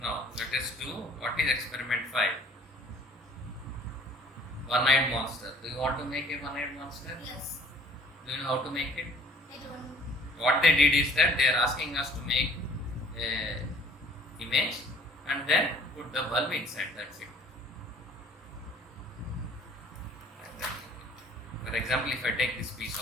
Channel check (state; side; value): normal; both; correlation 0.55